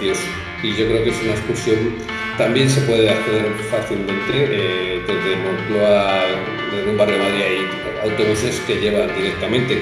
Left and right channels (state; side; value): identical; both; correlation 1.00